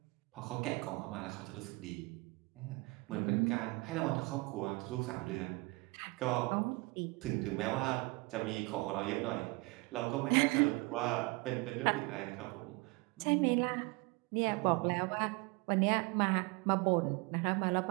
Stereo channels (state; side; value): quieter; left; 25.9 dB